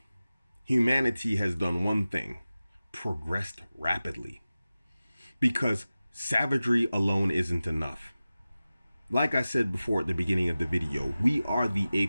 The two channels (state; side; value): inverted; both; correlation -0.96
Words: humanity has done one thing: progressed rapidly. Because savagery alone isn't enough. Like I said before at the beginning of the video, we are the